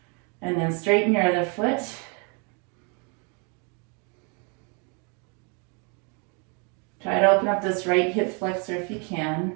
and then straighten your other foot. Try to open up this right hip flexor if you can.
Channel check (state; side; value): quieter; left; 36.0 dB